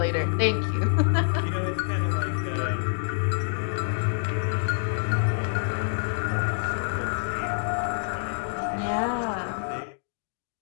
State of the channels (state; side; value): silent; right; digital silence